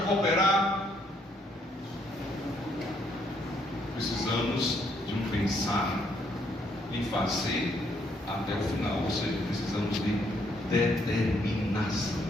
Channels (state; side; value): normal; both; correlation 0.71